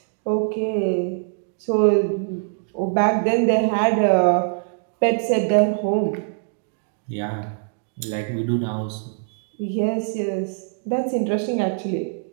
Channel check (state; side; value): silent; left; digital silence